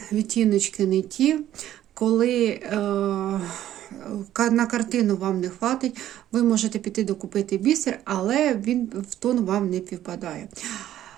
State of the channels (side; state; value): left; quieter; 12.3 dB